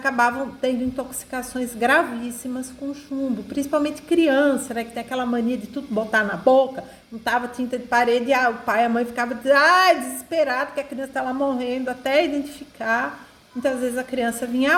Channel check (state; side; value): identical; both; correlation 1.00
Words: tendo intoxicações gravíssimas com chumbo, principalmente criança, né, que tem aquela mania de tudo botar na boca, não tava tinta de parede, o pai e a mãe ficavam desesperado que a criança estava morrendo, até identificar, muitas vezes a criança vinha